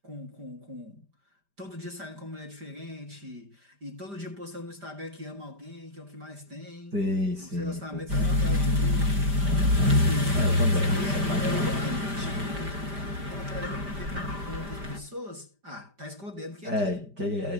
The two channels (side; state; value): left; late; 5.0 ms